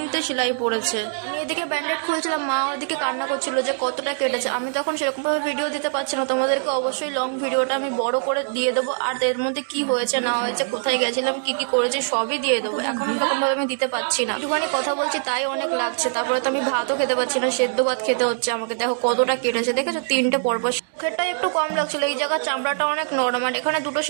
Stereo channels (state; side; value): silent; left; digital silence